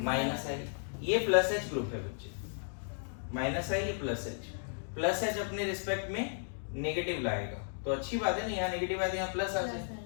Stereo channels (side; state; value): right; silent; digital silence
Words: माइनस आई। ये प्लस H ग्रुप है बच्चे, माइनस आई, ये प्लस H अपने रिस्पेक्ट में नेगेटिव लाएगा, तो अच्छी बात है ना, यहाँ नेगेटिव आया तो यहाँ प्लस आ जाए।